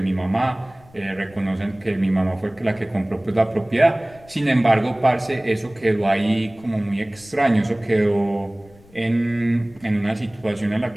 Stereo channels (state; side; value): noise; left; rumble, 26 dB below the sound